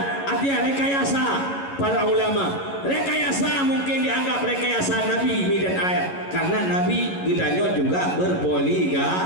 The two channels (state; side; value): late; right; 11 ms